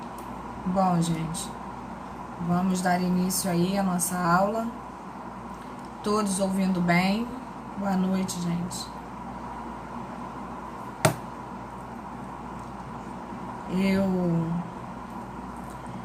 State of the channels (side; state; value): both; identical; correlation 1.00